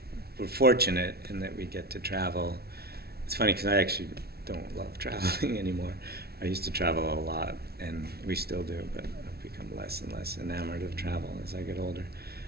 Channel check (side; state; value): left; late; 0.45 ms